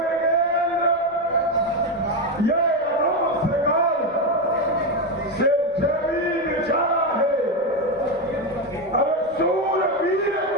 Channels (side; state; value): right; noise; rumble, 27 dB below the sound